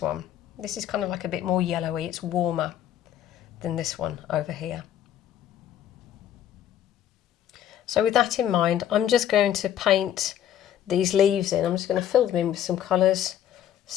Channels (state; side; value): quieter; right; 10.8 dB